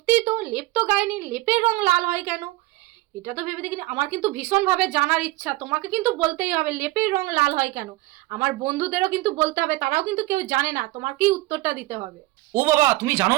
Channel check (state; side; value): quieter; left; 19.3 dB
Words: তো লেপ তো গায়নি, লেপের রং লাল হয় কেন? এটা তো ভেবে দেখিনি। আমার কিন্তু ভীষণভাবে জানার ইচ্ছা, তোমাকে কিন্তু বলতেই হবে লেপের রং লাল হয় কেন। আমার বন্ধুদেরও কিন্তু বলতে হবে, তারাও কিন্তু কেউ জানে না, তোমাকেই উত্তরটা দিতে হবে। ও বাবা, তুমি জানো